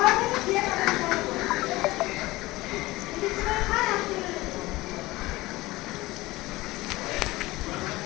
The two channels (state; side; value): quieter; right; 19.5 dB